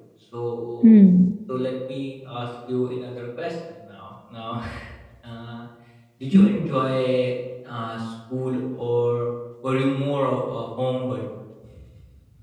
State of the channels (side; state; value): both; identical; correlation 1.00